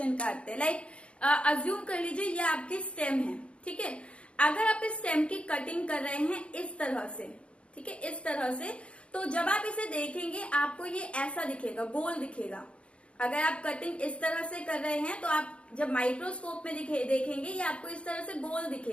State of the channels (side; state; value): right; late; 0.060 ms